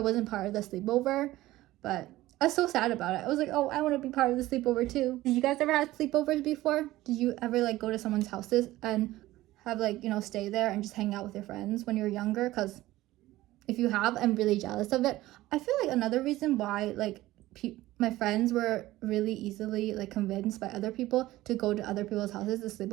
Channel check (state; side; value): quieter; left; 16.7 dB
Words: part of the sleepover. But I was so sad about it. I was like, oh, I want to be part of the sleepover too. Did you guys ever have sleepovers before? Did you ever like go to someone's houses and have like, stay there and just hang out with your friends when you were younger? Because if you have, I'm really jealous of it. I feel like another reason why like my friends were really easily like convinced by other people to go to other people's houses to